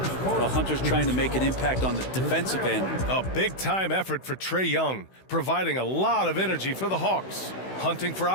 Well, Hunter's trying to make an impact on the defensive end. A big-time effort for Trae Young, providing a lot of energy for the Hawks. Hunting for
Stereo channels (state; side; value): late; right; 16 ms